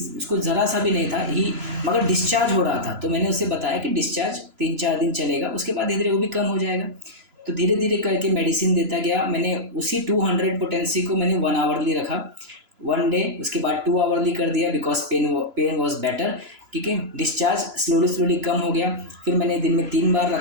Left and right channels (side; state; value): left; late; 3.0 ms